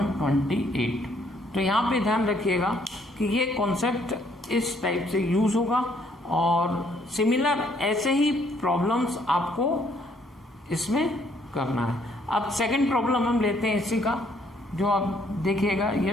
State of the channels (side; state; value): both; normal; correlation 0.66